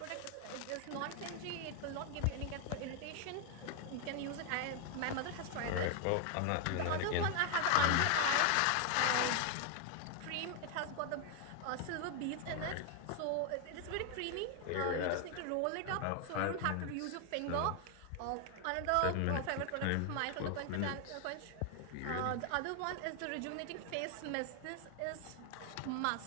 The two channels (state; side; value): different; both; correlation 0.00